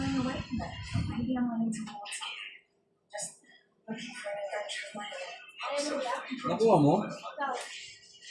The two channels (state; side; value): identical; both; correlation 1.00